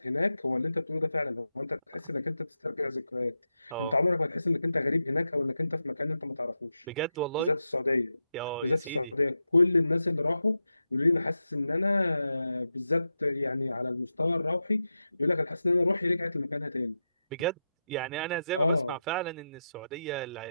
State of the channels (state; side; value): inverted; both; correlation -0.89